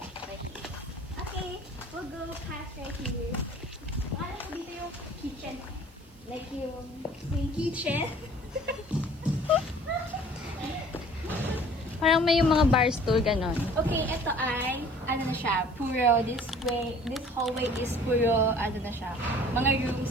Okay, we'll go past right here. Wala ko dito yung kitchen. Like yung kitchen. Parang may yung mga bar stool, ganon. Okay, ito ay, ano na siya, puro, this hallway is puro, ano na siya, mga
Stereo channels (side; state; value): right; noise; hiss, 29 dB below the sound